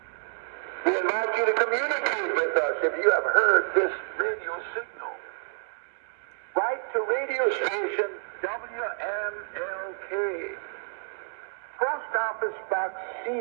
We invite you to communicate with us if you have heard this radio signal. Write to radio station WMLK, Post Office Box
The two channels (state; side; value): silent; left; digital silence